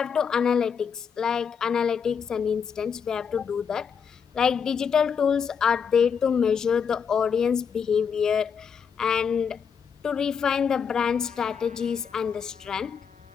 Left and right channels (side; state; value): right; quieter; 6.8 dB